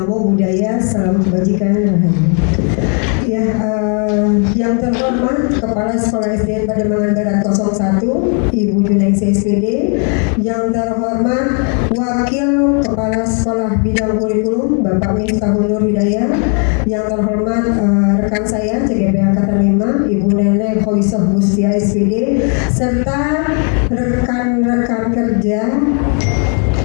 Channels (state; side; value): quieter; right; 39.8 dB